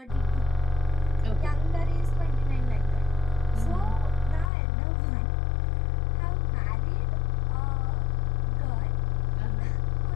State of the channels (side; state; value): right; drops out; at 4.5 s